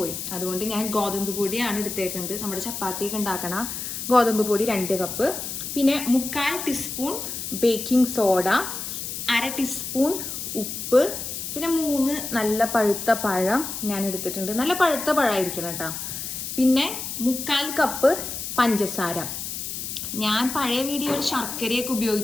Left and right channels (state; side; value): noise; left; hiss, 6 dB below the sound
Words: അതുകൊണ്ട് ഞാൻ ഗോതമ്പ് പൊടിയാണ് എടുത്തേക്കുന്നത്. നമ്മുടെ ചപ്പാത്തിയൊക്കെ ഉണ്ടാക്കണ ഗോതമ്പ് പൊടി 2 കപ്പ്, പിന്നെ 1/4 ടീസ്പൂൺ ബേക്കിംഗ് സോഡ, 1/2 ടീസ്പൂൺ ഉപ്പ്, പിന്നെ 3 നല്ല പഴുത്ത പഴം ഞാൻ എടുത്തിട്ടുണ്ട്. നല്ല പഴുത്ത പഴമായിരിക്കണം കേട്ടോ. പിന്നെ 1/4 കപ്പ് പഞ്ചസാര. ഞാൻ പഴയ വീഡിയോയിൽ ശർക്കരയൊക്കെ